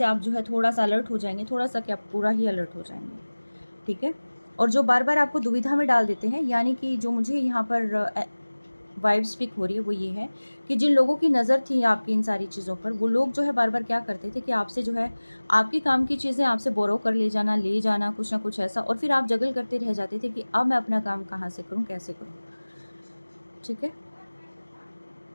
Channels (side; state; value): both; inverted; correlation -1.00